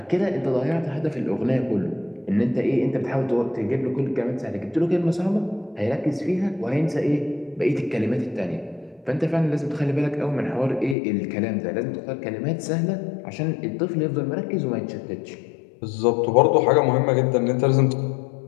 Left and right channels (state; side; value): drops out; right; at 11.0 s